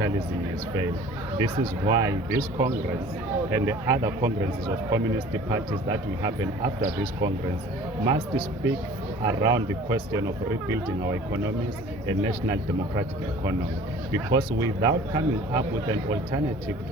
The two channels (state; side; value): normal; both; correlation 0.47